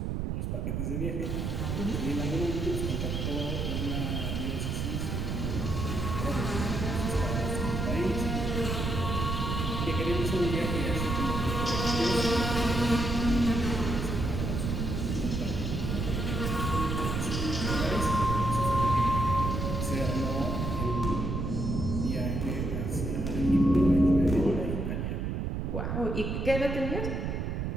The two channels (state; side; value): noise; right; rumble, 2 dB below the sound